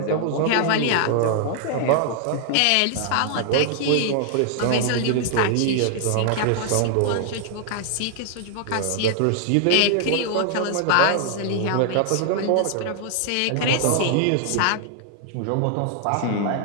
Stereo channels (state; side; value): different; both; correlation 0.00